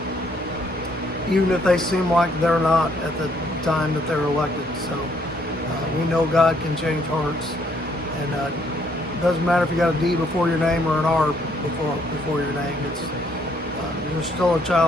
even if they seem like they're not at the time that they're elected. So we know God can change hearts, and it doesn't matter if you got a D before your name or an R before your name. It's you're still a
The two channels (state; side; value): normal; both; correlation 0.68